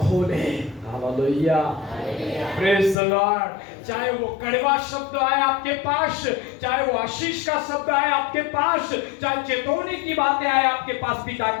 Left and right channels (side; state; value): right; drops out; at 3.0 s